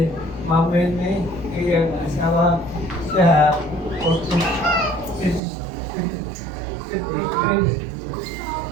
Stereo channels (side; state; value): left; drops out; at 5.4 s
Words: Mamene, iyang asawa sa